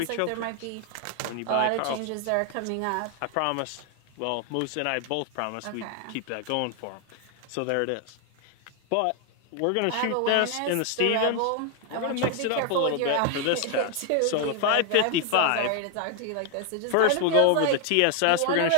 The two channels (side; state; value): both; different; correlation 0.00